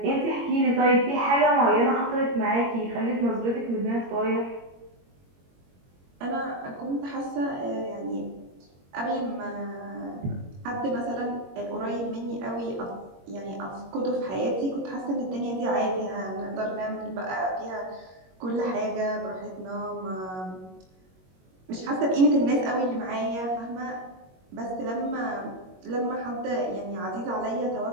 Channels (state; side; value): late; left; 21 ms